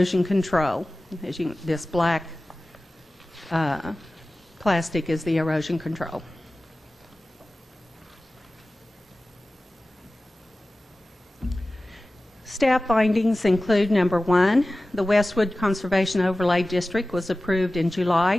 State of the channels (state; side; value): normal; both; correlation 0.96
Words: control. As you, this black plastic is the erosion control. Staff findings include number 1, the Westwood Conservation Overlay District was approved in